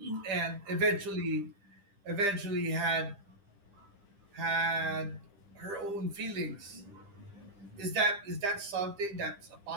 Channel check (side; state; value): left; late; 10 ms